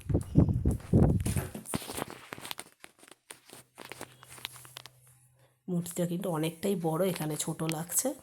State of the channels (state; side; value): identical; both; correlation 1.00